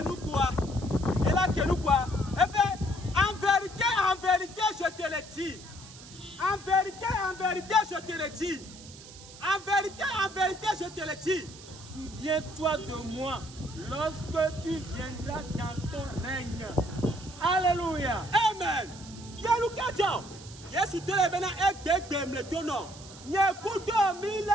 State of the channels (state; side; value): noise; right; hiss, 18 dB below the sound